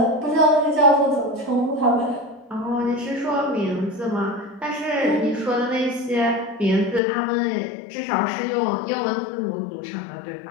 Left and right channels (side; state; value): right; drops out; at 7.0 s